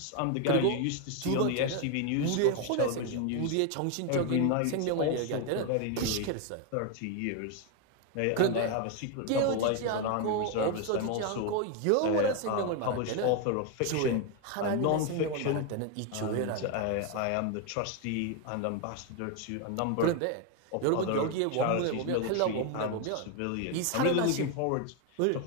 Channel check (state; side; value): different; both; correlation 0.01